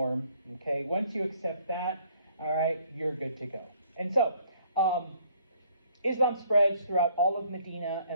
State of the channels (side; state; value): both; inverted; correlation -0.62